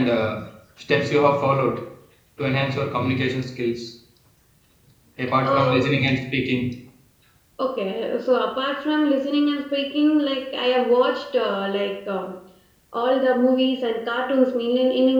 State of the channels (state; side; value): identical; both; correlation 1.00